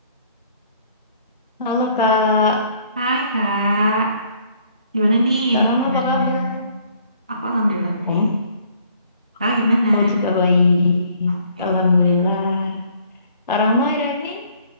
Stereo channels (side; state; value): both; inverted; correlation -0.60